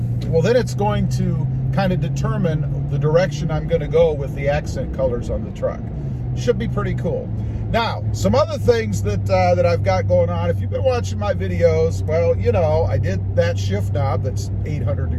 well, then it's going to kind of determine the direction I'm going to go with the accent colors on the truck. Should be pretty cool. Now, some other things that I've got going on. If you've been watching my videos, well, you know, I did that shift knob that's 800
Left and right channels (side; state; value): both; identical; correlation 1.00